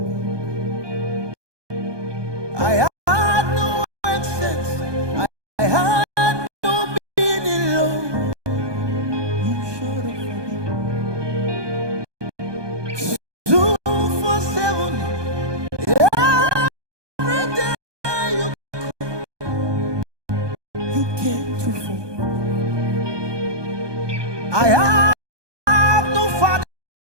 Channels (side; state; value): left; late; 1.2 ms